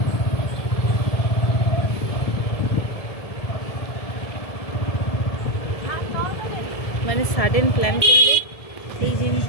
মানে সাডেন প্ল্যান করলে এই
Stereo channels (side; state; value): right; late; 1.7 ms